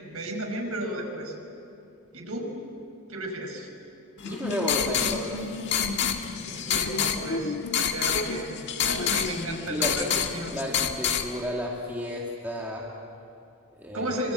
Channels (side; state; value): right; quieter; 3.9 dB